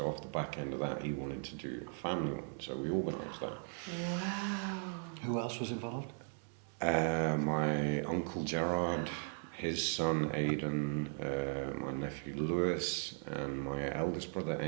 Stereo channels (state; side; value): silent; left; 53 dB below the other